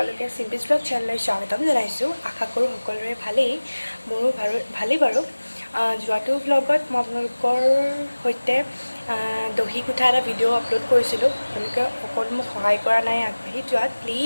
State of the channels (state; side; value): inverted; both; correlation -1.00